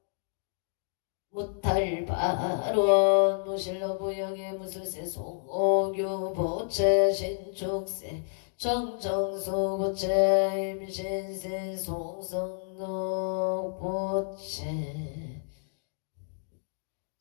무탈바론 무실로 부영의 무술세 송오규 보채 신축세 정정수 보채 임신세 송성록 보채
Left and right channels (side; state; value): right; silent; digital silence